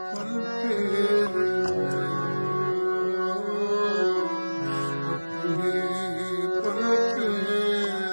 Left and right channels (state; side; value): inverted; both; correlation -1.00